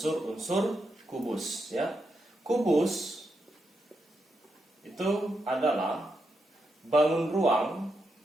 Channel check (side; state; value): both; normal; correlation 0.84